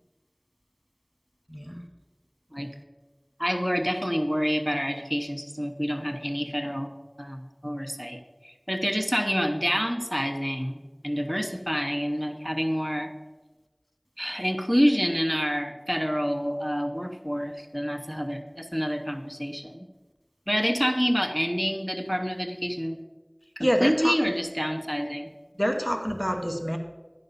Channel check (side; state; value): both; identical; correlation 1.00